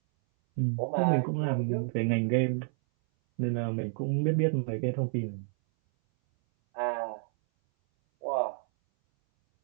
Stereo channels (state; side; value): silent; left; 58 dB below the other